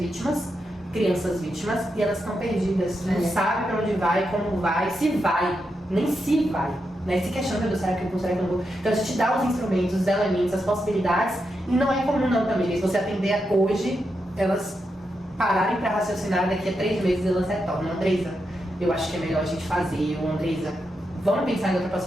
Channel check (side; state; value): both; normal; correlation 0.85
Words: crianças vítimas, e elas estão perdidas. Não sabem para onde vai, como vai, se vai, nem se vai. Né? Se questiona, será que eu vou, será que eu não vou? Então a gente dá os instrumentos, os elementos, as possibilidades, e não é comum não também. Se você atender hoje, elas pararem para raciocinar, daqui a 3 meses elas retornam. Andresa, eu acho que é melhor a gente fazer, ou Andresa, vamos pensar em outra